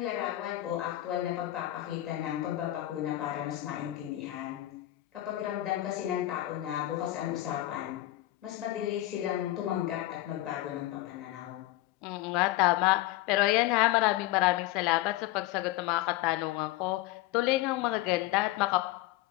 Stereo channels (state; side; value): quieter; right; 16.3 dB